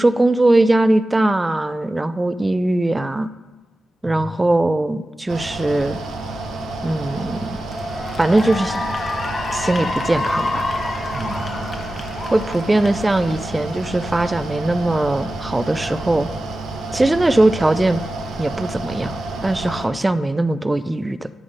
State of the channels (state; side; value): normal; both; correlation 0.95